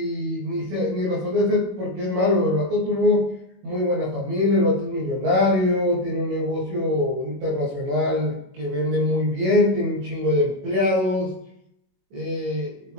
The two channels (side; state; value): left; late; 21 ms